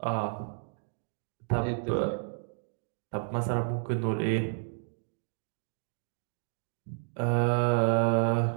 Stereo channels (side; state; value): left; silent; digital silence